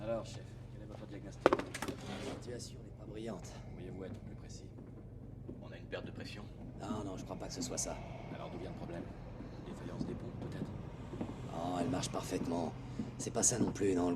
Alors, chef, quel est votre diagnostic? La situation n'est pas brillante. Pourriez-vous être plus précis? On a une perte de pression. Non, je crois pas que ce soit ça. Alors d'où vient le problème? Une défaillance des pompes, peut-être? Oh, elle marche parfaitement. C'est pas ça non plus, non.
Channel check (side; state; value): both; identical; correlation 1.00